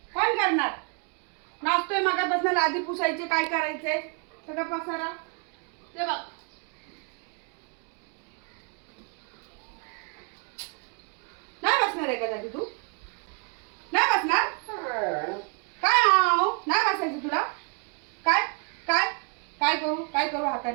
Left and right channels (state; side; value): quieter; left; 37.2 dB